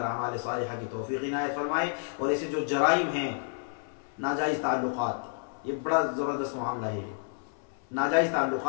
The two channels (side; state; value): right; silent; 56 dB below the other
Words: अमाल सालिहा की तौफीक इनायत फरमाए। और ऐसे जो जराइम हैं, नाजायज़ ताल्लुकात, ये बड़ा ज़बरदस्त मामला है। नाजायज़